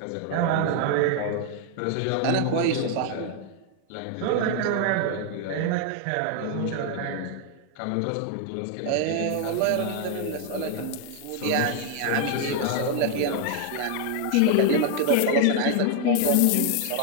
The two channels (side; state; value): both; different; correlation 0.00